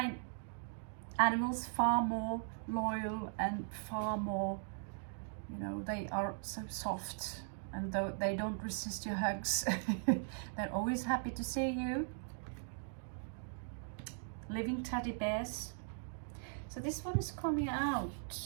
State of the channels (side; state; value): left; silent; digital silence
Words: animals far more loyal and far more, you know, they are so soft, and though they don't resist your hugs, they're always happy to see you. Living teddy bears. So this one is coming out